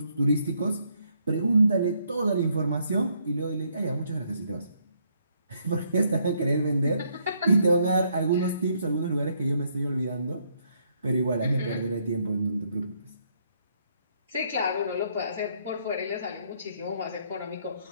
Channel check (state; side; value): inverted; both; correlation -0.71